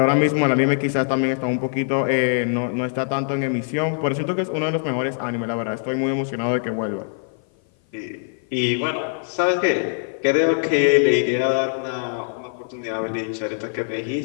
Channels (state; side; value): silent; right; 56 dB below the other